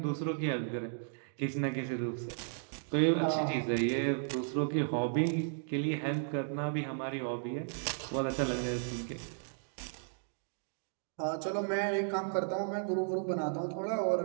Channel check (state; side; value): silent; left; digital silence